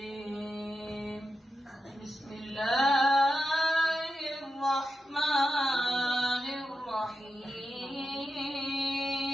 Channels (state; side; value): normal; both; correlation 0.89